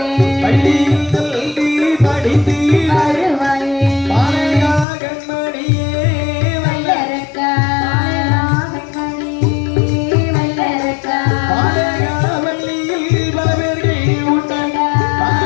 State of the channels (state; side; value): drops out; right; at 4.9 s